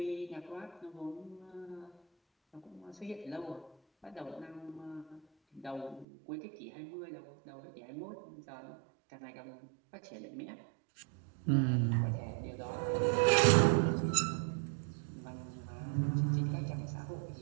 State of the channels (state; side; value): drops out; left; at 6.1 s